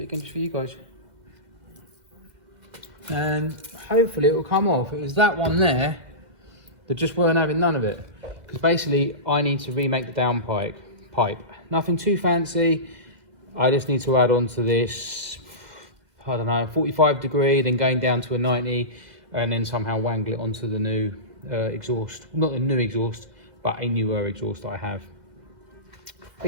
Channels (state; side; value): late; left; 2.0 ms